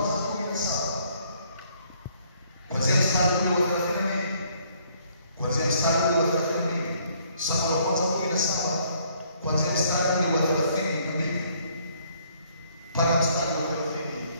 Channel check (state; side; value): inverted; both; correlation -0.65